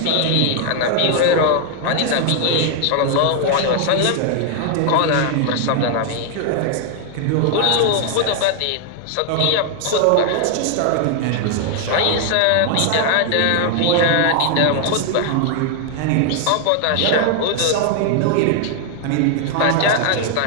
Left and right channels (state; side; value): different; both; correlation 0.00